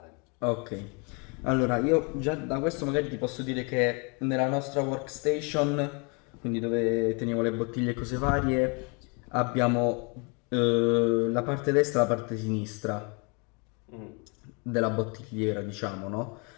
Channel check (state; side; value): quieter; right; 33.3 dB